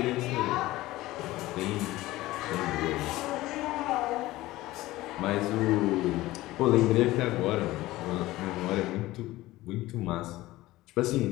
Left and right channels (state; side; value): quieter; right; 17.5 dB